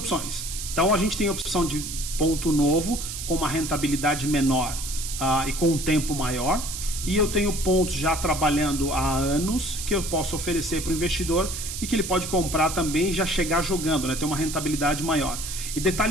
Então, a gente tem a opção de ponto novo com uma rentabilidade menor e com um tempo maior. E eu tenho pontos já trabalhando há anos que eu posso oferecer para o investidor e que ele pode comprar também e já chegar jogando, né? Ter uma rentabilidade maior. E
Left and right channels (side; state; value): right; noise; hiss, 7 dB below the sound